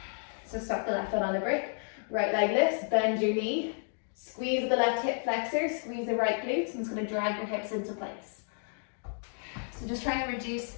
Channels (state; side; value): silent; right; 56 dB below the other